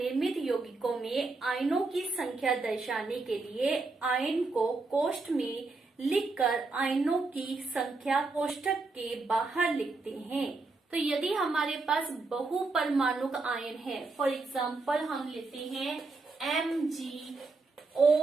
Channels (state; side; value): quieter; left; 3.7 dB